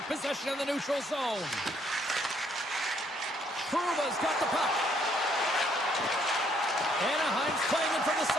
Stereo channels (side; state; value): both; normal; correlation 0.68